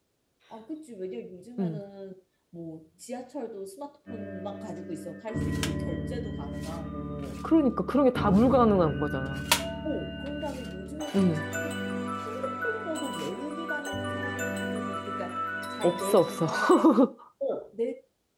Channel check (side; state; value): both; identical; correlation 1.00